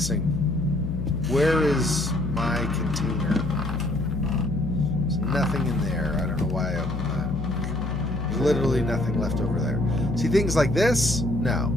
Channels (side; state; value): left; noise; hum, 4 dB below the sound